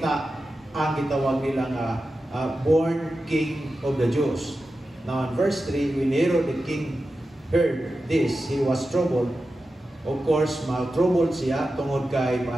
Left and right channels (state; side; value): normal; both; correlation 0.92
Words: ang gitawag nila nga born King of the Jews. Now in verse 3, when Herod the king heard this, he was troubled. Of course, troubled siya tungod kay